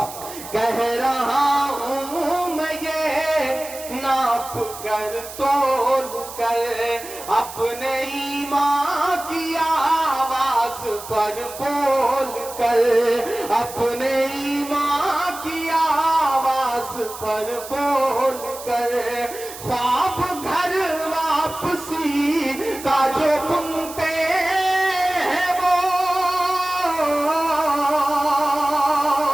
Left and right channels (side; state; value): right; noise; hiss, 13 dB below the sound